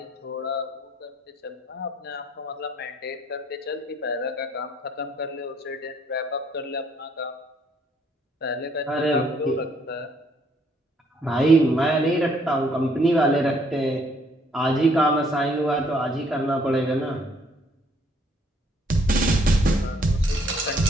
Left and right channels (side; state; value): both; normal; correlation 0.66